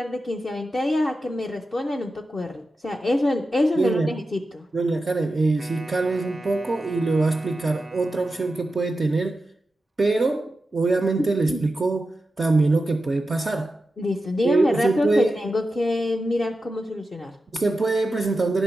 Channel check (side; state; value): both; normal; correlation 0.91